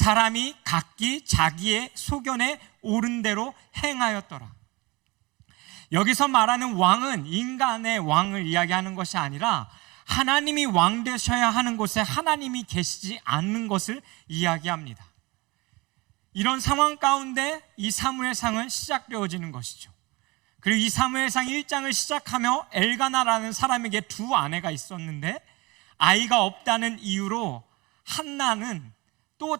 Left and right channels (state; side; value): quieter; left; 24.0 dB